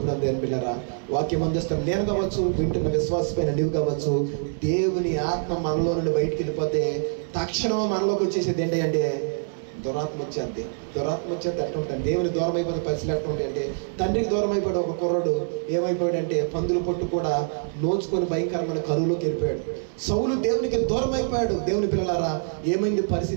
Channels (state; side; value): silent; left; digital silence